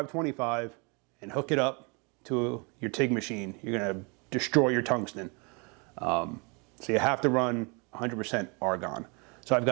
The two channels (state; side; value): quieter; left; 31.4 dB